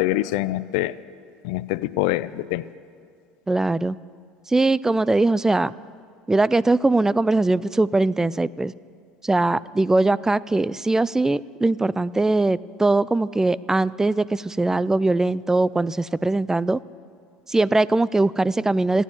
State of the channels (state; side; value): normal; both; correlation 0.89